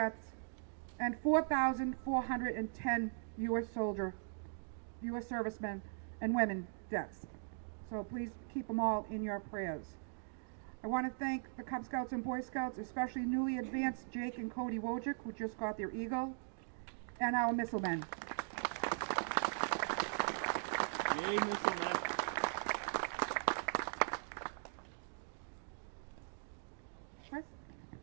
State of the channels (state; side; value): silent; left; digital silence